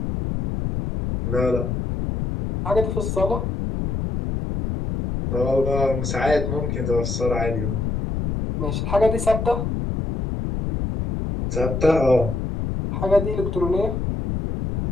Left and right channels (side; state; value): left; noise; rumble, 2 dB below the sound